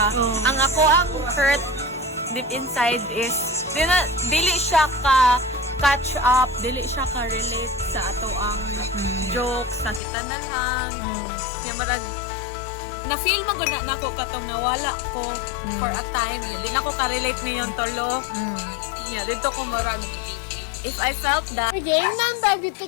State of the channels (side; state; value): right; drops out; at 10.0 s